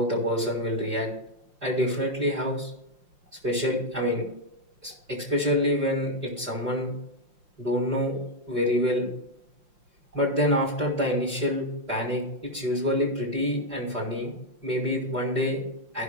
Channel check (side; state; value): left; late; 5.7 ms